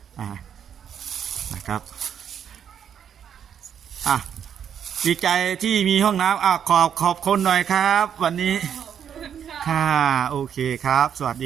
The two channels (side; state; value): left; quieter; 8.6 dB